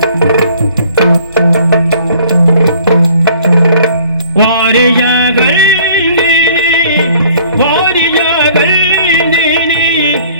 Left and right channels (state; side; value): inverted; both; correlation -0.55